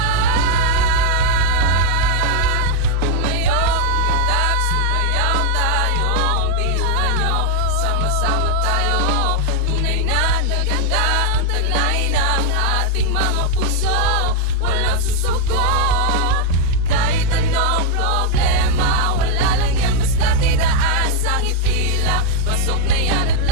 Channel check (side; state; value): both; different; correlation 0.00